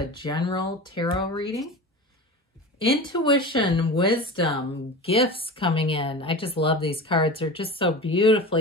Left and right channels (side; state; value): both; normal; correlation 0.31